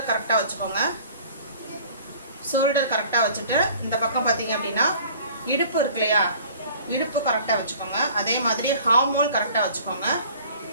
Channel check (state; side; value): inverted; both; correlation -0.49